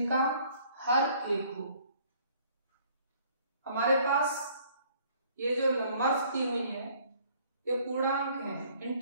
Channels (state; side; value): inverted; both; correlation -0.59